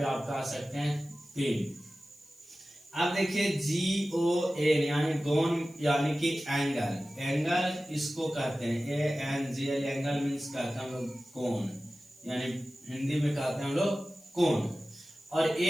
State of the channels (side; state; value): left; noise; hiss, 27 dB below the sound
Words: आप कह सकते हैं तीन। अब देखिए GON यानी गोन यानी कि एंगल इसको कहते हैं ANGL, एंगल मीन्स कहते हैं हम लोग कोण, यानी हिंदी में कहते हैं हम लोग कोण। और